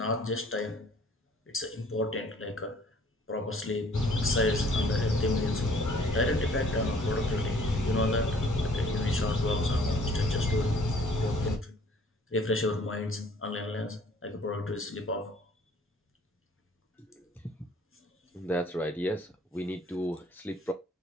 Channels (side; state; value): both; normal; correlation 0.56